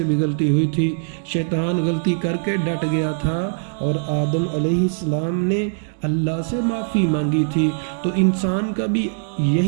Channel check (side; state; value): left; silent; digital silence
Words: بھی غلطی ہوئی تھی۔ شیطان غلطی کر کے ڈٹ گیا تھا اور آدم علیہ السلام نے اللہ سے معافی مانگی تھی۔ تو انسان کا بھی